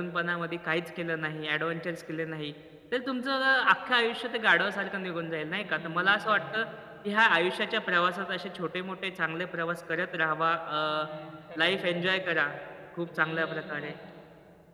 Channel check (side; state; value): both; identical; correlation 1.00